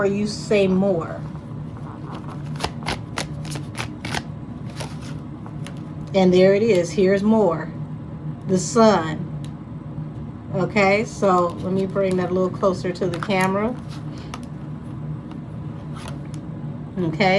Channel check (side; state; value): both; identical; correlation 1.00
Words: you say more. And there it is. Here's more. The sun. Okay, so let me bring that a little closer to the camera.